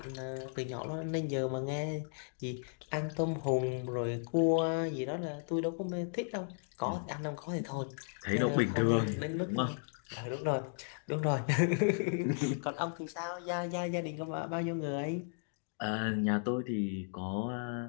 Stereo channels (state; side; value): silent; right; digital silence